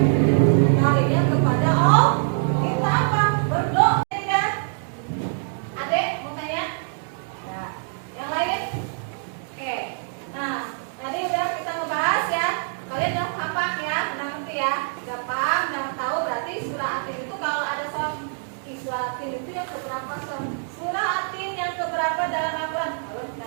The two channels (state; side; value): silent; left; 60 dB below the other